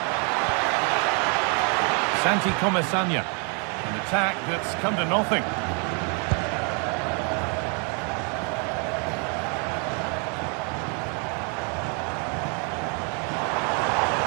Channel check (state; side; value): quieter; left; 37.0 dB